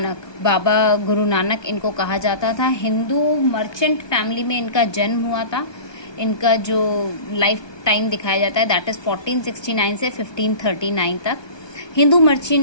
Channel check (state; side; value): late; right; 1.2 ms